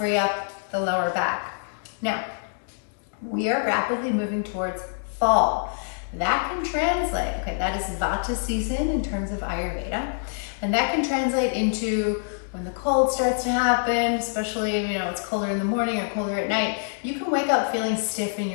up the lower back. Now, we are rapidly moving towards fall. That can translate, okay, that is Vata season in terms of Ayurveda, and that can translate into when the cold starts to happen, especially if it's colder in the morning or colder at night, you can wake up feeling stiff in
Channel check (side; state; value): right; silent; digital silence